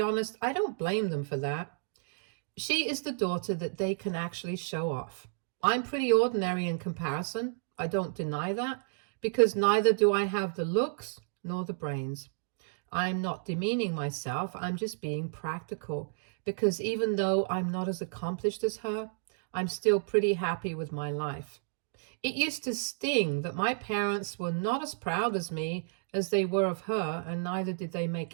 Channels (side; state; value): left; silent; digital silence